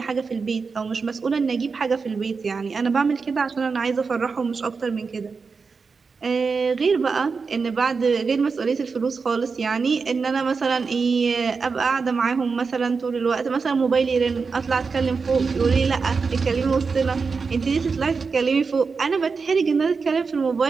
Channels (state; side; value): quieter; left; 4.9 dB